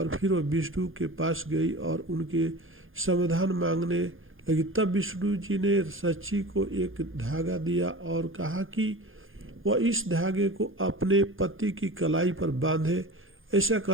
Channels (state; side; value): late; left; 0.59 ms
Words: फिर वो विष्णु के पास गई और उनके समाधान मांगने लगी। तब विष्णु जी ने सची को एक धागा दिया और कहा कि वह इस धागे को अपने पति की कलाई पर बांधे। ऐसा